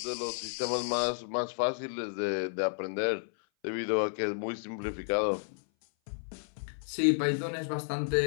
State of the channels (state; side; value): silent; right; 56 dB below the other